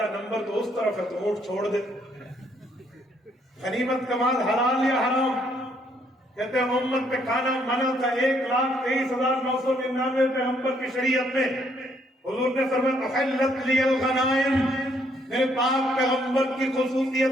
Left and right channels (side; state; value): both; normal; correlation 0.69